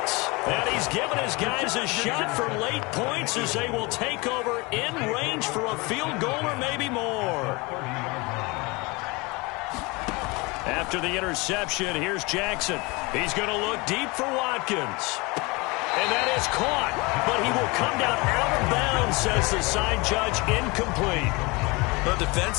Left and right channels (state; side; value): quieter; right; 25.8 dB